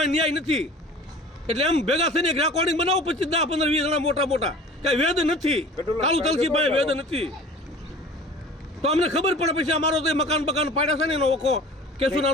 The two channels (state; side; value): normal; both; correlation 0.43